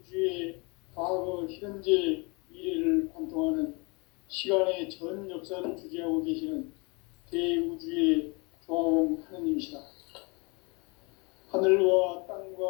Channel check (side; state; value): right; quieter; 29.4 dB